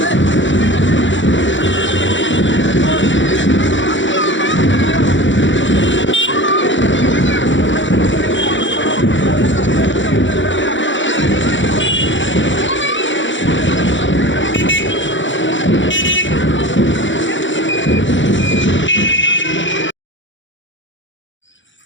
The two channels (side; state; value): right; late; 0.55 ms